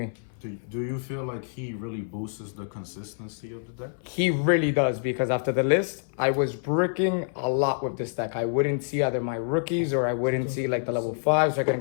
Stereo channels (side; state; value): right; silent; 60 dB below the other